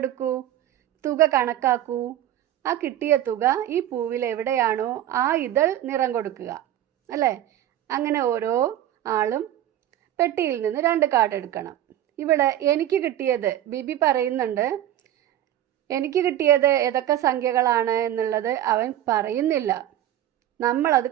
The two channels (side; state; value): left; quieter; 12.3 dB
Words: എടുക്കൂ, തുക കണക്കാക്കൂ. ആ കിട്ടിയ തുക ഈ പൂവിൽ എവിടെയാണോ ആ ഇതൾ നിറം കൊടുക്കുക അല്ലേ? അങ്ങനെ ഓരോ ആളും പെട്ടിയിൽ നിന്ന് 2 കാർഡ് എടുക്കണം. ഇവിടെ എനിക്ക് കിട്ടിയത്, ബിബി പറയുന്നുണ്ട്, എനിക്ക് കിട്ടിയത് ഏതൊക്കെ സംഖ്യകളാണ് എന്നുള്ളത് അവൻ പറയുന്നില്ല. നമ്മളത്